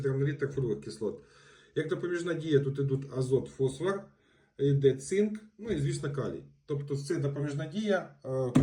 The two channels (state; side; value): identical; both; correlation 1.00